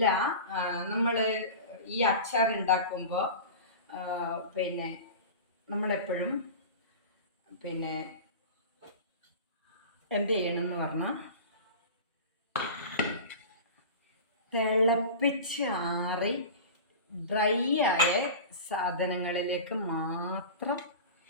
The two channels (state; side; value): inverted; both; correlation -0.32